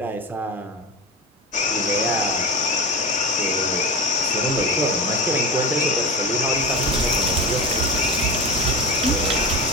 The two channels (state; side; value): normal; both; correlation 0.26